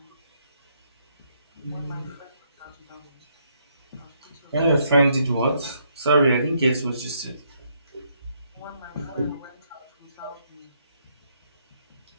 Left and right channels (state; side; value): inverted; both; correlation -0.73